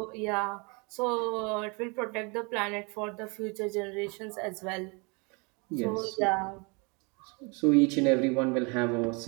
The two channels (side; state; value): left; quieter; 30.7 dB